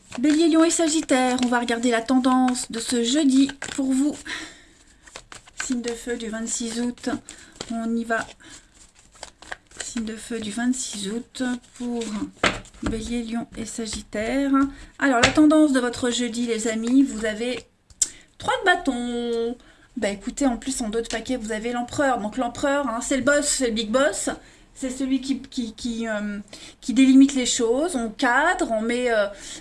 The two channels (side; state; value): both; identical; correlation 1.00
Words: Bélier, Lion et Sagittaire, on va regarder la tendance de ce jeudi pour vous. Signe de feu du 26 août, on y va. Signe de feu du 26 août pour Bélier, Lion et Sagittaire. Alors la tendance de votre jeudi les amis, vous avez 3 de bâton. Bah écoutez, en plus en d'autres paquets, vous avez l'empereur. Donc l'empereur, c'est le boss, c'est le big boss. C'est celui qui délimite les choses. On cadre, on met...